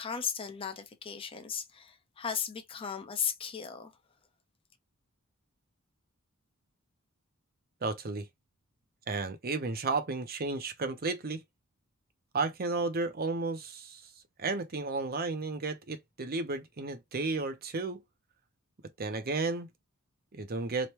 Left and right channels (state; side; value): normal; both; correlation 0.06